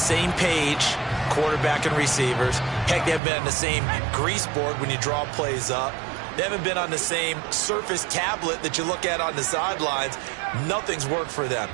page, quarterback and receivers. Heck, they haven't been on the same grease board when you draw plays up. They haven't been on the same surface tablet that you look at on the sidelines. Nothing's worked for them.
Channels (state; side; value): drops out; left; at 3.2 s